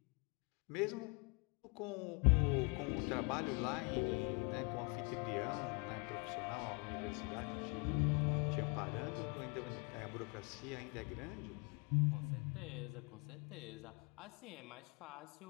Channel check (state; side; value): quieter; right; 32.5 dB